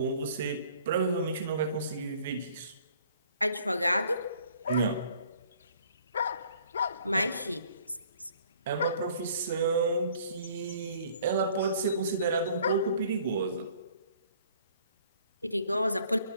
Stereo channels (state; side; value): inverted; both; correlation -0.57